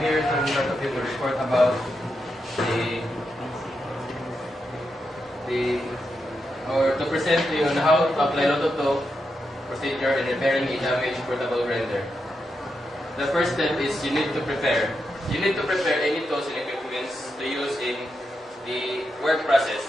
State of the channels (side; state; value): both; normal; correlation 0.85